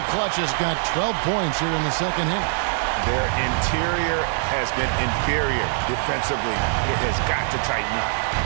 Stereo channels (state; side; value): silent; left; 63 dB below the other